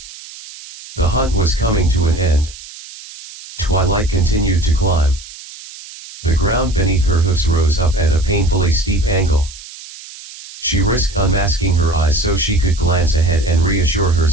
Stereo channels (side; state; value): right; noise; hiss, 16 dB below the sound